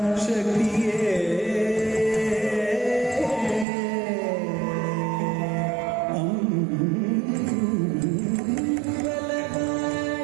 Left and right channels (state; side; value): drops out; left; at 3.7 s